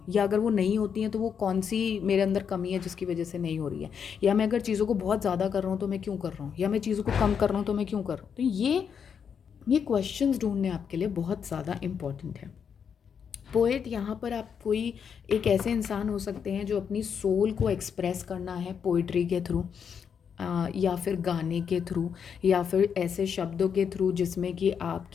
या अगर वो नहीं होती हैं तो वो कौन सी मेरे अंदर कमी है जिसकी वजह से नहीं हो रही है, या मैं अगर चीज़ों को बहुत ज़्यादा कर रहा हूँ तो मैं क्यों कर रहा हूँ, या मैं चीज़ों को कम कर रहा हूँ तो मैं क्यों कर रहा हूँ। तो ये क्वेश्चंस ढूंढने आपके लिए बहुत ज़्यादा इम्पॉर्टेंट है। पोएट, यहाँ पर आप कोई एक ऐसे इंसान हो सकते हैं जो अपनी सोल को एक्सप्रेस करना है पोइट्री के थ्रू, या फिर गाने के थ्रू, या फिर ऐसे शब्दों के थ्रू जिसमें कि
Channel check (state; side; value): quieter; right; 7.2 dB